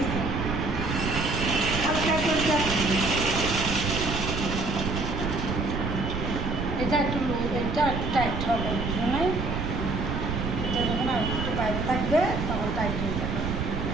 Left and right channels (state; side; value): noise; right; rumble, 3 dB below the sound